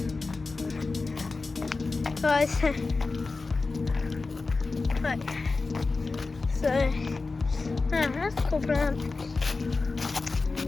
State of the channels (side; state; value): right; quieter; 3.8 dB